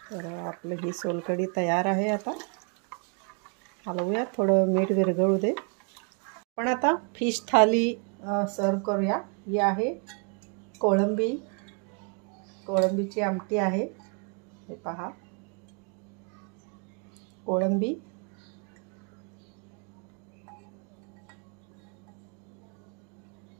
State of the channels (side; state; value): left; quieter; 38.2 dB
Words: तर आपली ही सोलकढी तयार आहे. आता हलवूया, थोडं मीठ विरघळू दे. आपण आता फिश थाली सर्व करूया. ही आहे कोळंबीची आमटी आहे. हे पहा, कोळंबी,